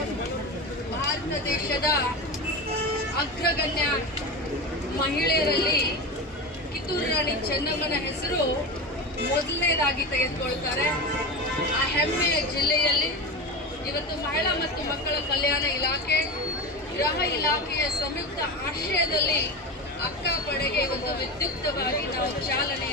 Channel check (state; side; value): normal; both; correlation 0.23